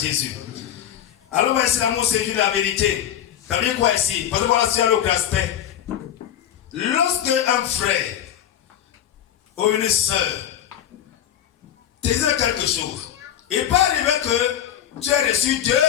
Alors, on va essayer l'amour, c'est juste la vérité. Ça veut dire quoi ici? Parce que voilà, c'est un autre aspect. Lorsque un frère ou une soeur te dit quelque chose, il peut arriver que tu as reçu deux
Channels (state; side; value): quieter; right; 10.6 dB